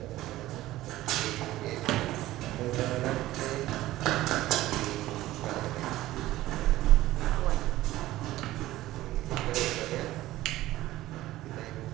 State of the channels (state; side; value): quieter; left; 16.0 dB